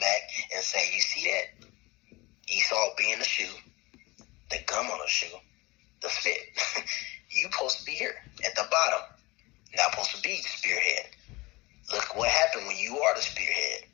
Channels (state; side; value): quieter; right; 22.7 dB